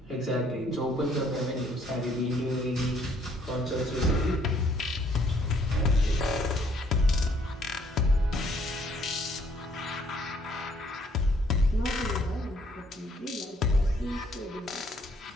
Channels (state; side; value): normal; both; correlation 0.65